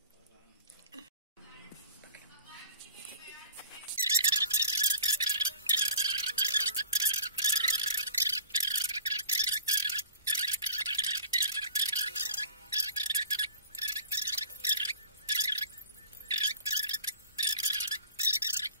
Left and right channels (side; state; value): both; inverted; correlation -0.44